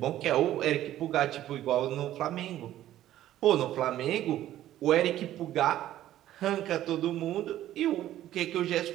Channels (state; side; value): quieter; left; 13.2 dB